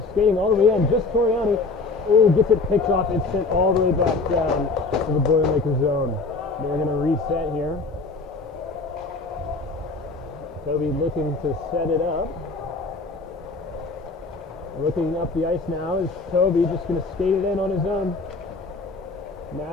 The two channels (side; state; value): right; quieter; 3.8 dB